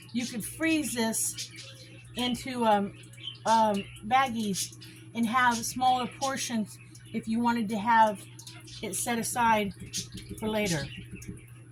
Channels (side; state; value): both; identical; correlation 1.00